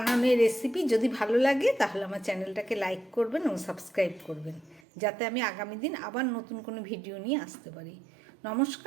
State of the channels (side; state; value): left; drops out; at 4.8 s